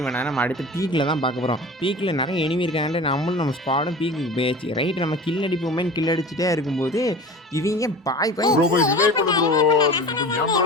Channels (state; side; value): normal; both; correlation 0.36